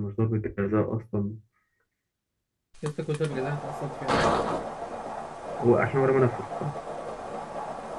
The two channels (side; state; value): both; identical; correlation 1.00